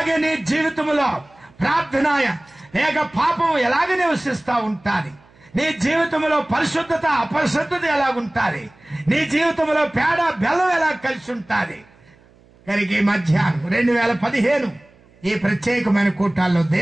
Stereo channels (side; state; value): right; noise; hum, 29 dB below the sound